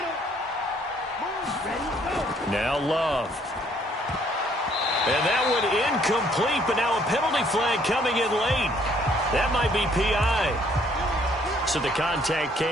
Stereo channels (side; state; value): both; normal; correlation 0.64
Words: Now Love. And that one incomplete, but now a penalty flag coming in late. That might be PI. So the contact